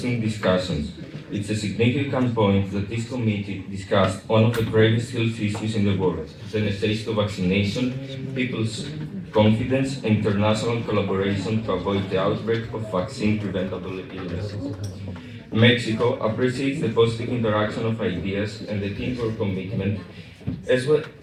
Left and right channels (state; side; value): identical; both; correlation 1.00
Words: discussions. It's a significant point that this committee discussed one of the gravest health issues in the world, the necessity of vaccination, people's confidence, and international collaboration to avoid the outbreak of vaccine-preventable illnesses. Mexico appreciates the positive interaction of ideas and the teamwork commitment, as